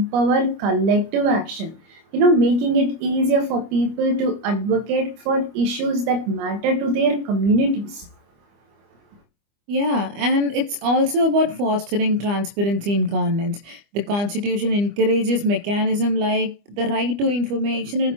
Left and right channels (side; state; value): left; late; 25 ms